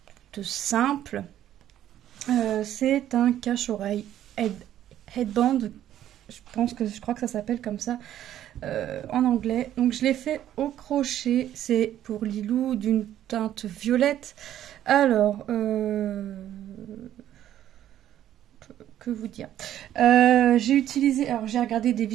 simple. C'est un cache-oreille headband. Je crois que ça s'appelle comme ça en anglais. Donc je l'ai fait au crochet. C'est pour Lilou d'une teinte violette. Alors, que vous dire, j'ai utilisé, alors j'ai regardé des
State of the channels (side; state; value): left; quieter; 11.7 dB